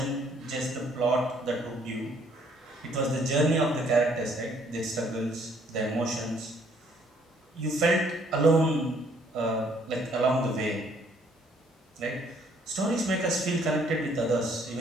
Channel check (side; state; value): both; normal; correlation 0.64